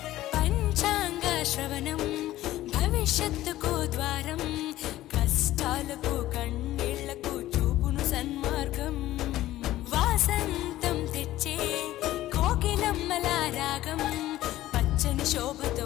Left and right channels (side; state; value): right; quieter; 15.1 dB